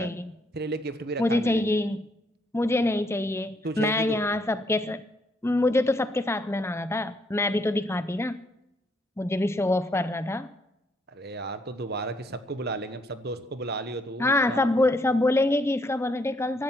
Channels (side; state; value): both; normal; correlation 0.71